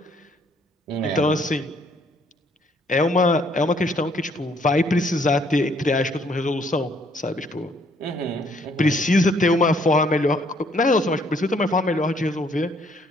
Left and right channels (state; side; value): normal; both; correlation 0.65